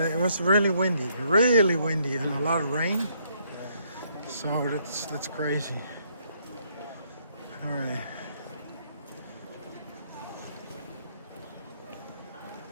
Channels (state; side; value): inverted; both; correlation -0.70